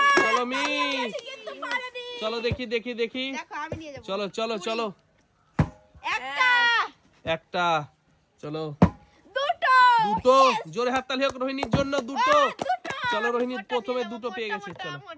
চলো মিস, চলো দেখি দেখি দেখি, চলো চলো চলো। একটা, চলো দুটো, জোরে হাততালি হোক রোহিণীর জন্য। দুটো, চলো রোহিণী প্রথমে দুটো পেয়ে গেছে। চলো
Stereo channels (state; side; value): identical; both; correlation 1.00